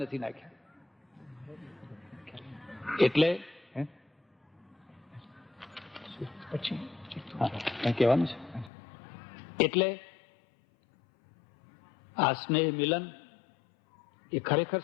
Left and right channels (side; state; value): right; drops out; at 8.7 s